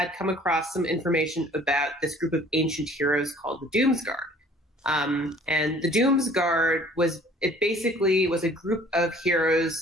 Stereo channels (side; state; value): both; normal; correlation 0.53